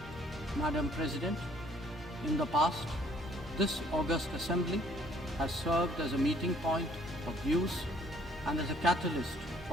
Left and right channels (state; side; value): normal; both; correlation 0.60